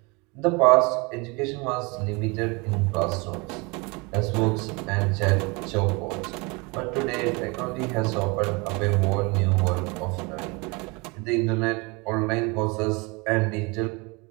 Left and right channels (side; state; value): left; quieter; 27.8 dB